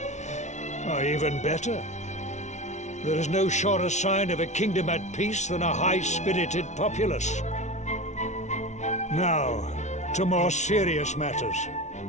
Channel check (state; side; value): late; right; 0.33 ms